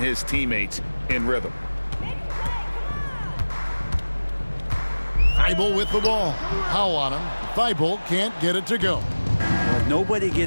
teammates in rhythm. Thibault with the ball. Powell on him. Thibault can't get it to go. Nobody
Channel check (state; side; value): inverted; both; correlation -1.00